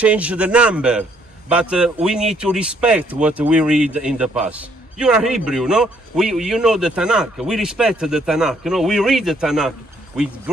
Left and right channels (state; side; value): normal; both; correlation 0.68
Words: the number, but we need to respect what we read in the past. You are Hebrew, no? You know the Tanakh. We respect the Tanakh. You know, we read the Tanakh with